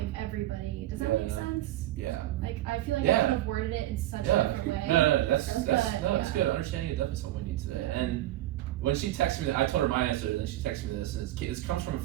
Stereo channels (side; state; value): left; quieter; 14.7 dB